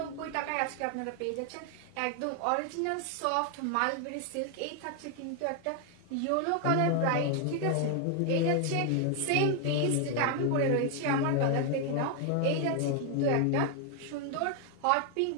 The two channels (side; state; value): both; different; correlation 0.00